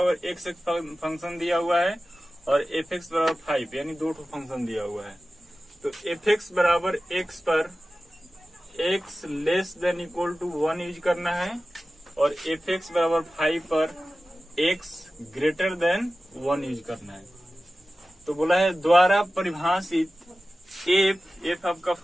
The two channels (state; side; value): normal; both; correlation 0.95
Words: एक्स एक फंक्शन दिया हुआ है और एफ एक्स बराबर 5 यानी 2 फंक्शन दिया हुआ है। तो एफ एक्स बराबर एक्स पर X less than equal to 1 use करना है और एफ एक्स बराबर 5 पर एक्स ग्रेटर देन 1 यूज करना है। तो बोला है द्वारा परिभाषित एफ आपका